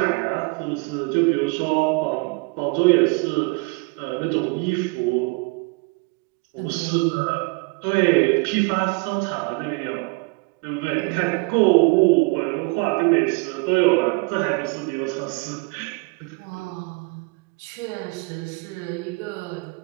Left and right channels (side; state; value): left; quieter; 29.0 dB